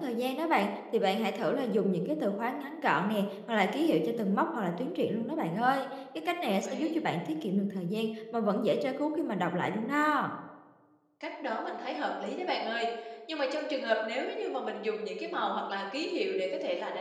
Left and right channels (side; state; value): both; identical; correlation 1.00